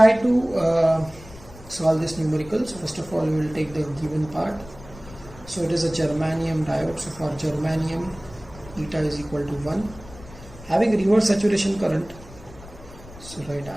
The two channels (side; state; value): left; noise; rumble, 18 dB below the sound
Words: to solve this numerical. So first of all we will take the given part. So it is a germanium diode. So for germanium eta is equal to 1, having reverse saturation current. So write